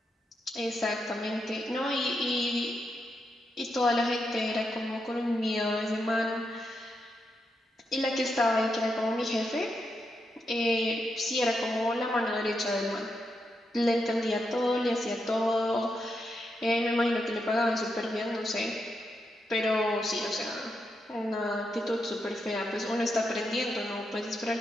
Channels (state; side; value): normal; both; correlation 0.84